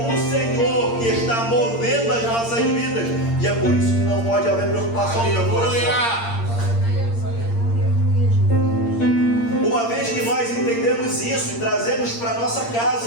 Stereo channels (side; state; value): right; late; 8.7 ms